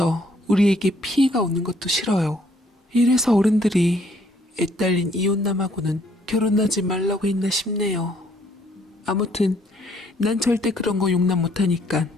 우리에게 피해가 오는 것도 싫어요. 이래서 어른들이 애딸린 이혼남하고는 결혼하지 말라고 했나 싶네요. 아무튼 난 절대 그런 거 용납 못하니까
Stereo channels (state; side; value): normal; both; correlation 0.65